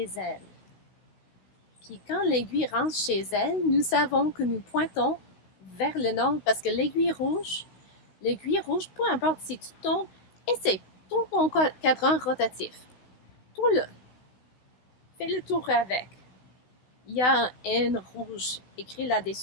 elle. Puis quand l'aiguille rentre chez elle, nous savons que nous pointons vers le nord parce que l'aiguille rouge, peu importe si tu tournes, essaie, tourne ton cadran rotatif. Tourne-le. Fais le tour avec. Il y a un N rouge écrit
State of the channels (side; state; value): right; late; 16 ms